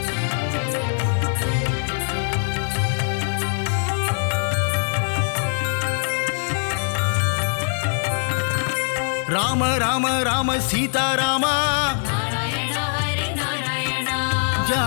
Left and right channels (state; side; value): silent; right; 64 dB below the other